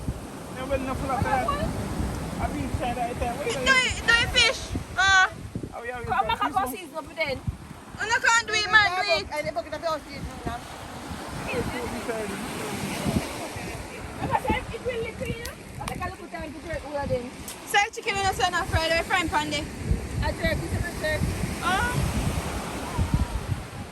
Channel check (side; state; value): both; identical; correlation 1.00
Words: Never enough of that. I've been trying to eat that. Do you fish? Come back and go season up then. You no can't do it, man, do it. I never get a fish season. It will look clean. I think I'll put time to jerk all of them. Say chicken in the sun and fried away frying pan there. I jerk, it's a jerk.